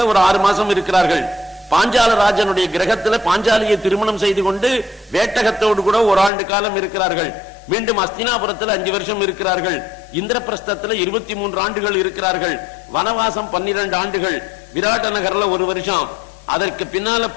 ஒரு 6 மாசம் இருக்கிறார்கள். பாஞ்சால ராஜனுடைய கிரகத்துல பாஞ்சாலியை திருமணம் செய்து கொண்டு வேட்டகத்தோடு கூட 1 ஆண்டு காலம் இருக்கிறார்கள். மீண்டும் அஸ்தினாபுரத்தில் 5 வருஷம் இருக்கிறார்கள். இந்திரபிரஸ்தத்தில் 23 ஆண்டுகள் இருக்கிறார்கள். வனவாசம் 12 ஆண்டுகள். விராட்ட நகர்ல 1 வருஷம். அதற்கு பின்னால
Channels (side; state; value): right; drops out; at 6.3 s